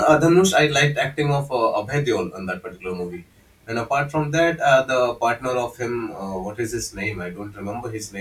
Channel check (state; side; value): identical; both; correlation 1.00